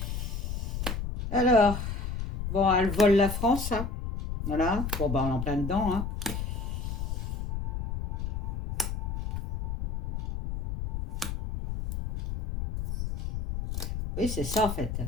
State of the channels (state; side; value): noise; left; rumble, 4 dB below the sound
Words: Alors, bon, elle vole la France. Hein. Voilà. Bon, ben, on est en plein dedans. Hein. Oui, c'est ça en fait.